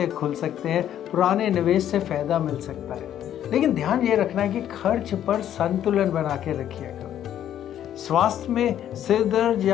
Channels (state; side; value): quieter; right; 10.8 dB